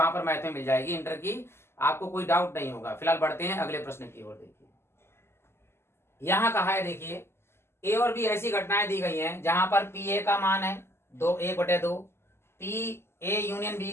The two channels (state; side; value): late; right; 0.12 ms